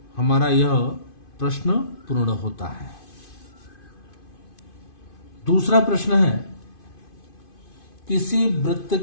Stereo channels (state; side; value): late; right; 2.5 ms